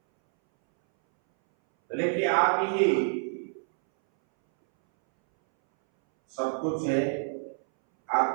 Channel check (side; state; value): left; silent; 60 dB below the other